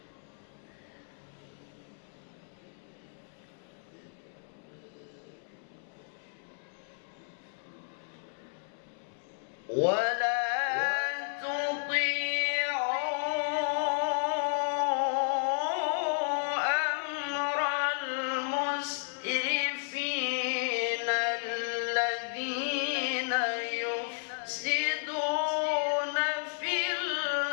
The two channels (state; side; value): silent; right; digital silence